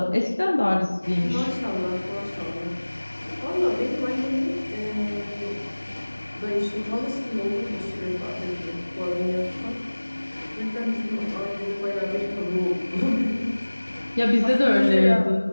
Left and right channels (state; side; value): inverted; both; correlation -1.00